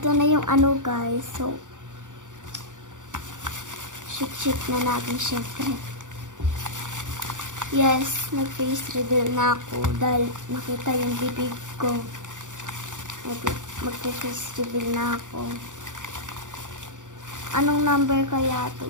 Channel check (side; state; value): left; late; 0.86 ms